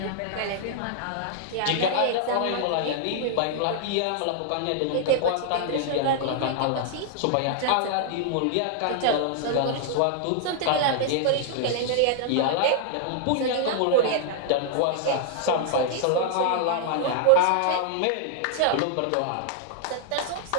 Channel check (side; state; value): both; different; correlation -0.01